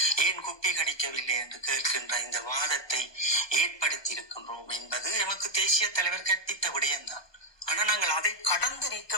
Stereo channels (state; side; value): late; right; 1.2 ms